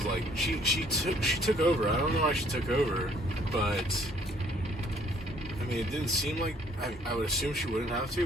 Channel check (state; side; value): normal; both; correlation 0.61